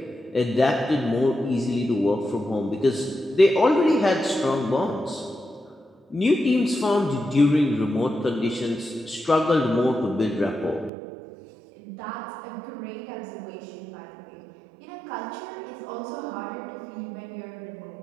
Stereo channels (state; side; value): drops out; left; at 10.9 s